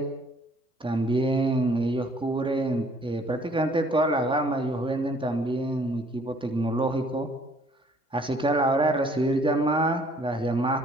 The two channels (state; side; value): normal; both; correlation 0.60